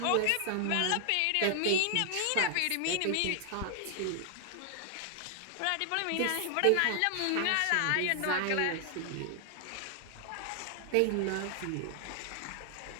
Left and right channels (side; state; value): both; different; correlation 0.00